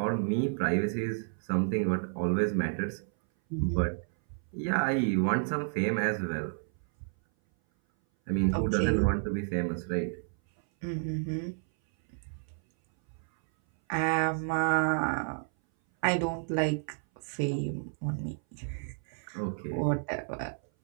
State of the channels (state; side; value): silent; left; 57 dB below the other